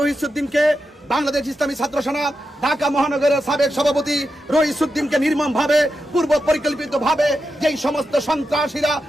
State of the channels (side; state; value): both; normal; correlation 0.88